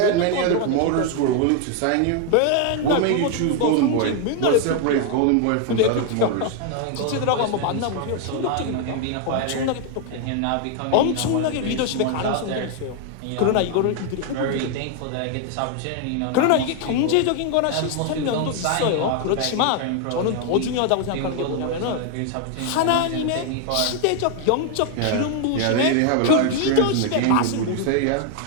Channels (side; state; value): both; different; correlation 0.01